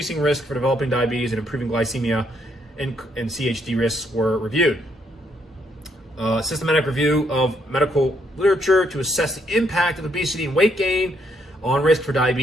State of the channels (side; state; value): both; normal; correlation 0.73